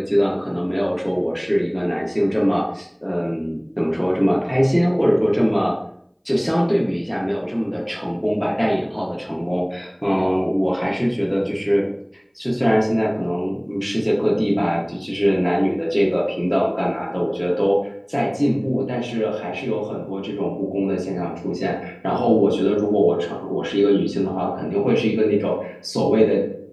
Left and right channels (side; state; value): both; identical; correlation 1.00